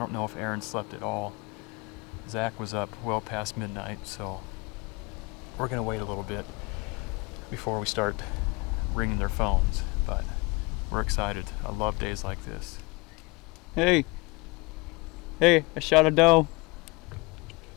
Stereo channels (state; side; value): quieter; right; 25.8 dB